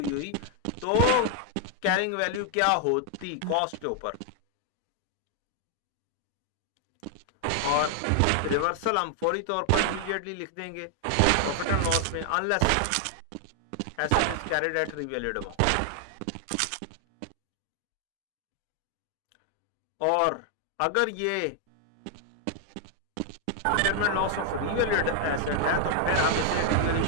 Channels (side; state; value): both; different; correlation 0.00